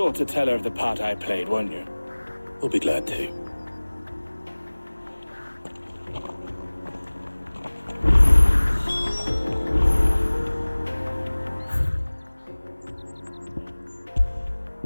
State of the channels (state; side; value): inverted; both; correlation -1.00